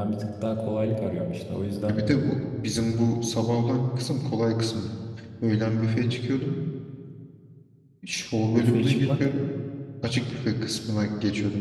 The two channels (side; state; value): both; identical; correlation 1.00